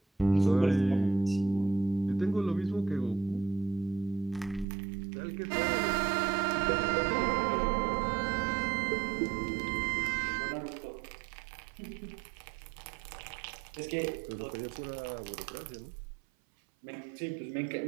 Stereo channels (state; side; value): drops out; left; at 4.7 s